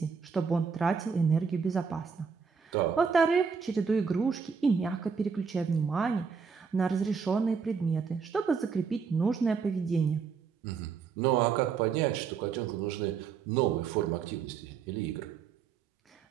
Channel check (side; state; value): left; quieter; 5.9 dB